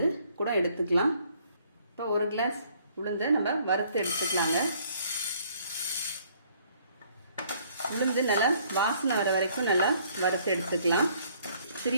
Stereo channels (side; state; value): both; inverted; correlation -0.62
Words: கூட எடுத்துக்கலாம். இப்போ 1 கிளாஸ் உளுந்தை நம்ம வறுத்து எடுத்துக்கலாங்க. உளுந்து நல்லா வாசனை வர வரைக்கும் நல்லா வறுத்து எடுத்துக்கலாம்.